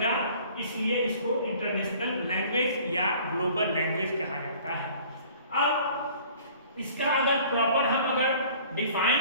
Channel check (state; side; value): inverted; both; correlation -0.51